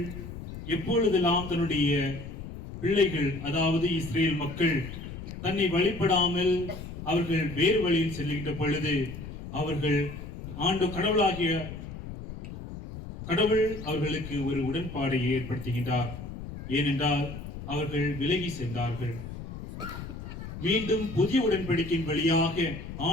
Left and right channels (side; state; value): left; noise; rumble, 10 dB below the sound